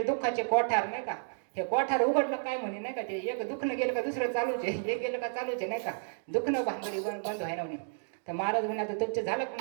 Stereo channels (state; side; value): silent; left; digital silence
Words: दुःखाचे कोठार नाही का. हे कोठार उघडलं काय म्हणे नाही का, ते एक दुखणं गेलं का दुसरं चालूच आहे, हे गेलं का चालूच आहे नाही का, दुखणं भानगडी बंद व्हायना म्हणे. तर महाराज म्हणे आता तुमचं झालं